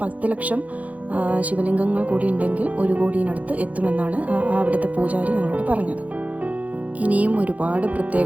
10 ലക്ഷം ശിവലിംഗങ്ങൾ കൂടി ഉണ്ടെങ്കിൽ 1 കോടിയിനടുത്ത് എത്തുമെന്നാണ് അവിടുത്തെ പൂജാരി ഞങ്ങളോട് പറഞ്ഞത്. ഇനിയും ഒരുപാട്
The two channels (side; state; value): left; late; 0.071 ms